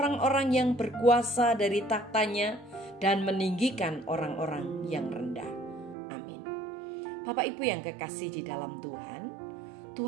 yang berkuasa dari tahtanya dan meninggikan orang-orang yang rendah. Amin. Bapak Ibu yang kekasih di dalam Tuhan,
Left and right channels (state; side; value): drops out; left; at 6.0 s